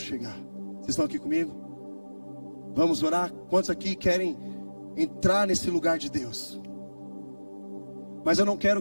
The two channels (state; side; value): inverted; both; correlation -1.00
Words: chegar. Vocês estão aqui comigo? Vamos orar? Quantos aqui querem entrar nesse lugar de Deus? Mas eu não quero